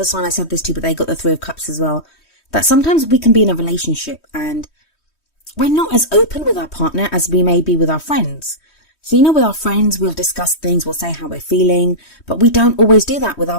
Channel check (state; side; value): late; right; 3.1 ms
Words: sign I said this to, but they got the 3 of Cups as well. That sometimes we can be in a relationship and we're not as open with our partner as we may be with our friends. So, with our friends, we'll discuss things, we'll say how we're feeling, but we don't always do that with our